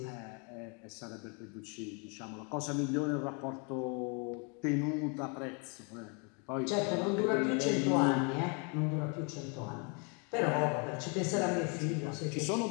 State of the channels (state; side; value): quieter; right; 35.3 dB